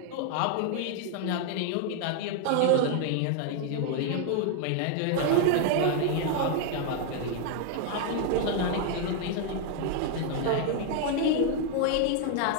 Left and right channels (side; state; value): both; different; correlation 0.00